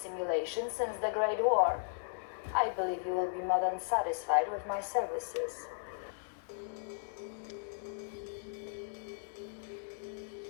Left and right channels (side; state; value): right; silent; digital silence